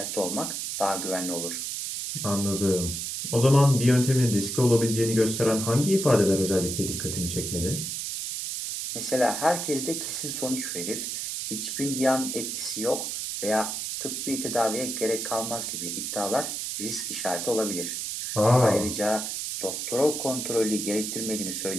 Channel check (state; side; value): noise; right; hiss, 4 dB below the sound